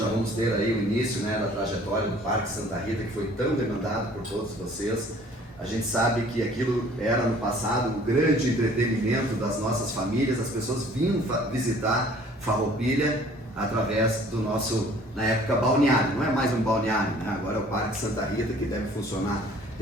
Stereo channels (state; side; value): normal; both; correlation 0.53